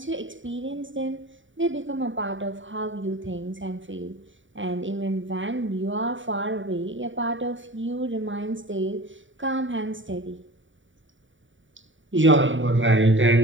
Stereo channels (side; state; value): left; late; 0.56 ms